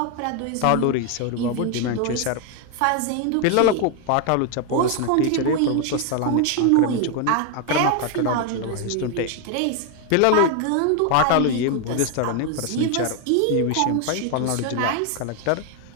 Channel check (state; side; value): different; both; correlation 0.01